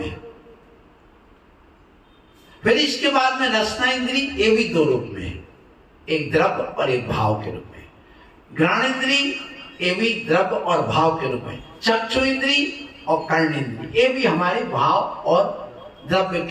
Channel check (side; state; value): both; identical; correlation 1.00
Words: है। फिर इसके बाद में रसना इंद्रिय, ये भी 2 रूप में है, एक द्रव्य और एक भाव के रूप में। घ्राण इंद्रिय, ये भी द्रव्य और भाव के रूप में। चक्षु इंद्रिय और कर्ण इंद्रिय, ये भी हमारे भाव और द्रव्य